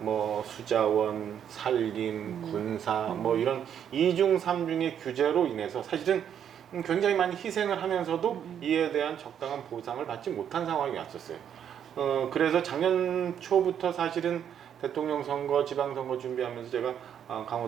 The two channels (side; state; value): left; quieter; 9.0 dB